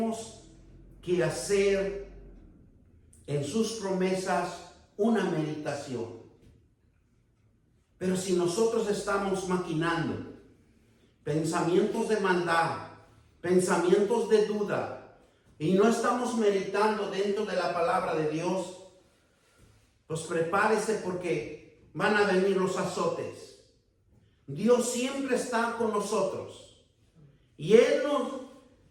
que hacer en sus promesas una meditación. Pero si nosotros estamos maquinando pensamientos de maldad, pensamientos de duda, y no estamos meditando dentro de la palabra de Dios, pues prepárese porque van a venir los azotes. Dios siempre está con nosotros y Él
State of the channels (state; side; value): identical; both; correlation 1.00